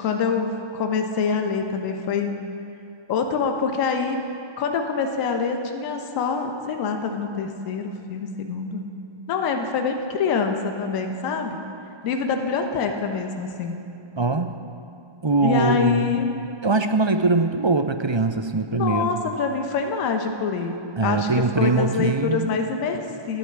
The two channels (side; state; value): left; late; 1.3 ms